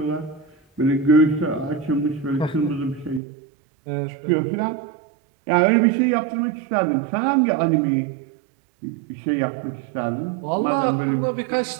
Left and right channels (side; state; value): left; drops out; at 3.2 s